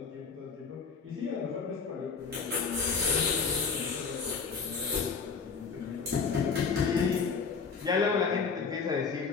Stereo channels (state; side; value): quieter; right; 5.3 dB